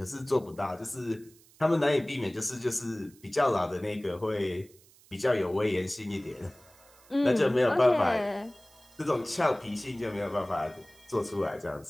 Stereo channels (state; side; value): noise; right; hiss, 27 dB below the sound